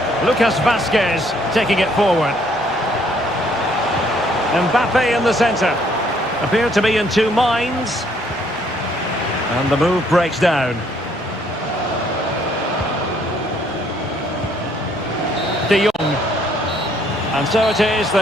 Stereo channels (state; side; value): normal; both; correlation 0.66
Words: Lucas Vazquez taking it forward. Mbappe in the centre. Appear to be in two minds. And the move breaks down. De Jong. And so it is,